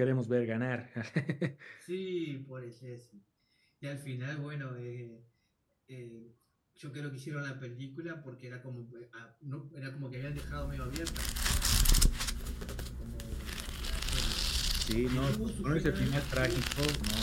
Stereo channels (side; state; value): both; identical; correlation 1.00